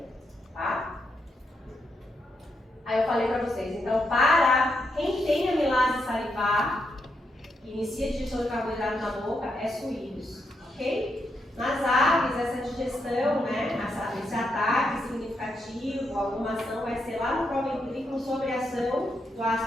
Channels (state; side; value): normal; both; correlation 0.81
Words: Tá? Aí eu falei para vocês, então, para quem tem amilase salivar, que inicia a digestão de carboidrato na boca, é suínos. Ok? Nas aves, essa digestão, né, esse ataque significativo, alguma ação vai ser lá no proventrículo sobre a ação do